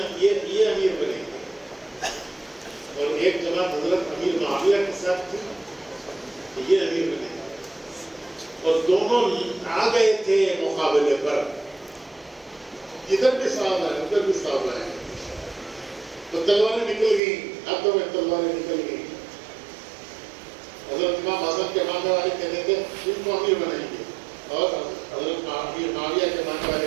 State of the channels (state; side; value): drops out; left; at 17.2 s